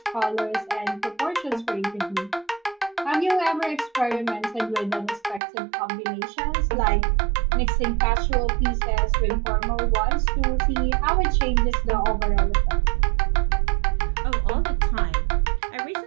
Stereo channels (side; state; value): left; drops out; at 5.4 s